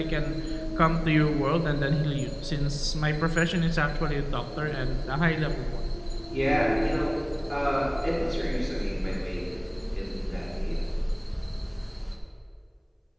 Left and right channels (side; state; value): both; identical; correlation 1.00